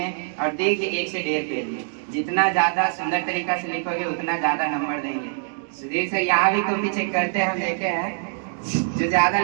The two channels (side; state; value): left; silent; digital silence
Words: और दीर्घ 1 से 1.5 पेज में। जितना ज्यादा सुंदर तरीका से लिखोगे उतना ज्यादा नंबर देंगे। सुधीर सर यहाँ भी कॉपी चेक करते हैं, हम देखे हैं। जो ज्यादा